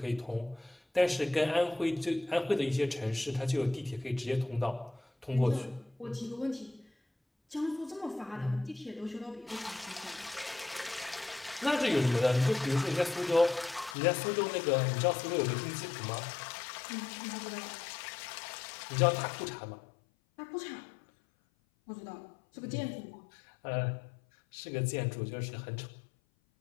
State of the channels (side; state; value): right; drops out; at 14.0 s